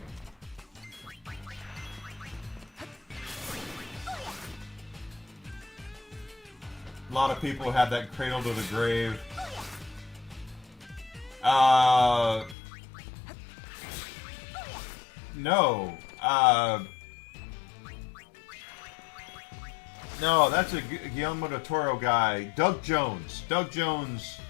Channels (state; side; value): drops out; right; at 12.6 s